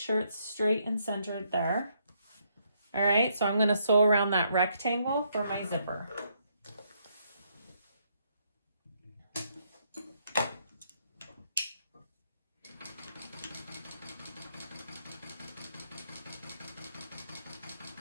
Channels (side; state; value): both; inverted; correlation -0.74